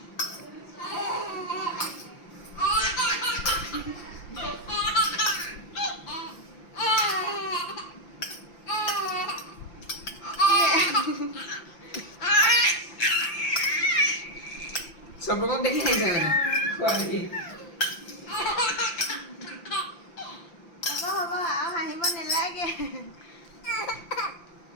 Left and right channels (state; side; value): late; right; 5.8 ms